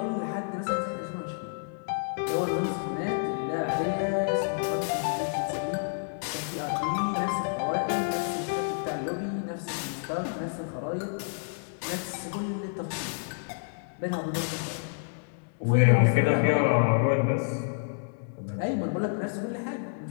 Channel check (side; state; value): right; silent; digital silence